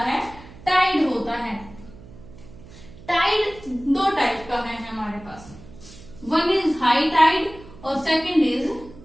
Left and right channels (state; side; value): noise; right; hum, 19 dB below the sound